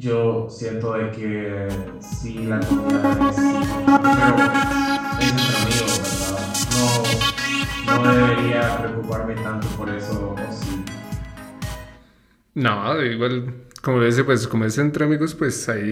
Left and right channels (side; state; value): both; identical; correlation 1.00